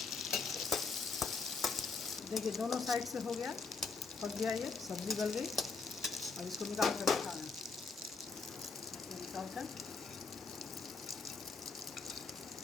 देखिए दोनों साइड से हो गया, पक गया, ये सब्जी गल गई। अब इसको निकाल कर रखा है, निकाल कर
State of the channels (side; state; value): right; quieter; 4.5 dB